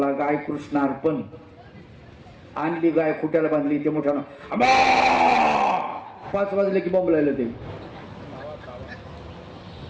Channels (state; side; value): identical; both; correlation 1.00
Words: गाय कृष्ण अर्पण. आणली गाय, खुट्याला बांधली. ते मोठ्यानं 5 वाजले की बोंबलायला ते.